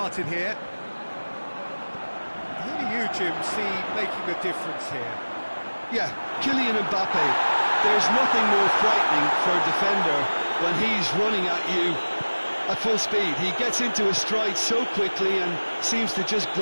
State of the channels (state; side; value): inverted; both; correlation -1.00